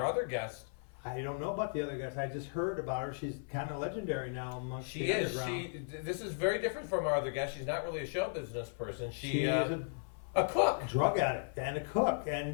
other guest, I don't know about the other guys. I just heard about her. She's kind of legendary now amongst she the is. underground. This is very different from our other guest. She's not really a show business person. She is a cook. drug addict and a cook,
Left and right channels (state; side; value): silent; right; 54 dB below the other